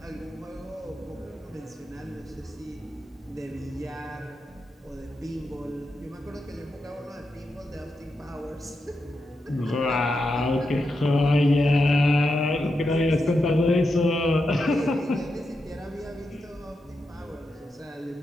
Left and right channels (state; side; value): normal; both; correlation 0.86